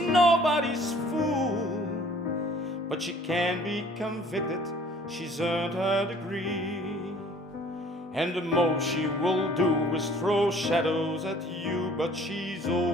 fool. But she can be convicted, she's earned her degree. And the most she will do is throw shadows at you, but she's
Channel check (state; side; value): normal; both; correlation 0.53